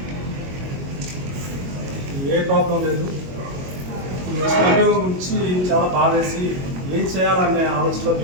ఏ ప్రాబ్లం లేదు. ఈ అభియోగం గురించి చాలా బాధేసి ఏం చేయాలనే ఆలోచనలో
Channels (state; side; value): late; left; 22 ms